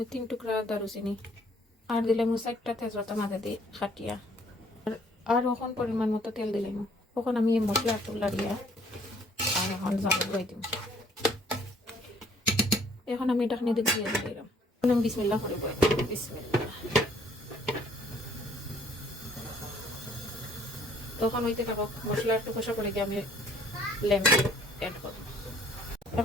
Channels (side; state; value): both; normal; correlation 0.60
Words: 3 টুকরা দারুচিনি। আর দিলাইমু 4টা তেজপাতা মাঝে দিয়ে খাটিয়া। আর এখন পরিমাণ মতো তেল দিলাইমু। এখন আমি এই মশলা একটু লাড়িয়া আর এখন জাল ধুই দিব। এখন আমি ঢাকনি দিয়ে দিয়ে দিলাম। এখন আমি বিসমিল্লাহ করে বই বিসমিল্লাহ। তখন হইতে থাকো, মশলা একটু কষা করে গিয়ে আমি লেম অ্যাড করব।